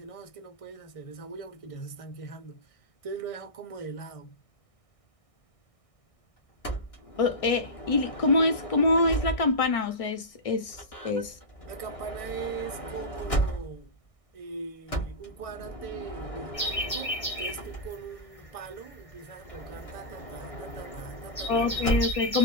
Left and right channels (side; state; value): right; late; 1.6 ms